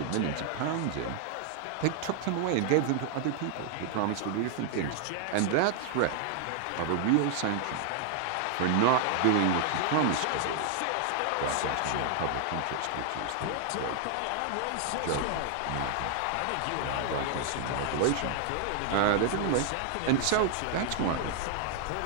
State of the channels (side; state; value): both; different; correlation 0.00